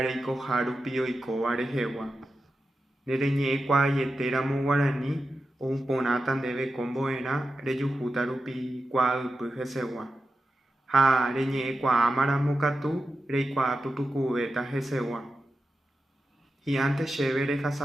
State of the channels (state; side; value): normal; both; correlation 0.91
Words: Harupi Oiko Arejewa. Nereñe Quayetéramo Guarani, o un ponatan debe comboera, Reyujutarupi Quadupy Hesegua. Ha reñe Quamara Mokatu, Reikwa Pupucubeta Hesegua. Y antes chévere